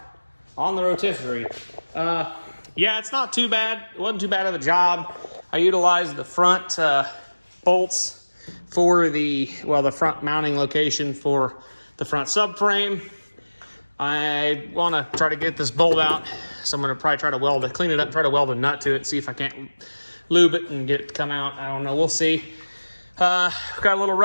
on the rotisserie. Yeah, it's not too bad. It wasn't too bad of a job. I utilized the front bolts for the front mounting location for the front subframe. I want to try to get this bolt out, so I'm going to probably try to clean it up, try to weld a nut to it, see if I can't lube it and get it to come out. I don't know. We'll see. Got a little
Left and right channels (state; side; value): inverted; both; correlation -1.00